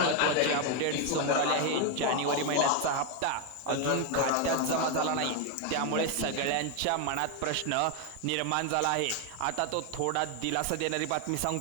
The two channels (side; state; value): both; different; correlation 0.01